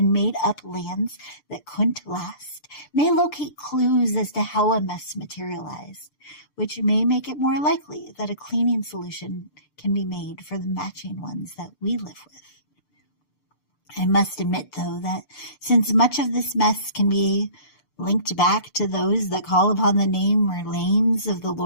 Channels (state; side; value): late; right; 6.8 ms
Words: made-up lands that couldn't last may locate clues as to how a mess materialized, which may make it more likely that a cleaning solution can be made for the matching ones that we live with. I must admit, though, that since much of this mess can be linked back to those that call upon the name or names of the